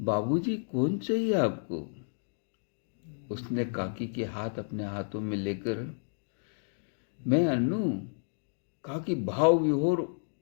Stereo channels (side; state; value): right; silent; digital silence